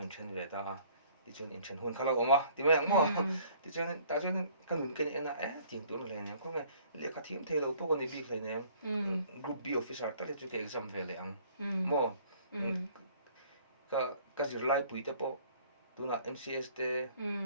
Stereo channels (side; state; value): both; inverted; correlation -0.56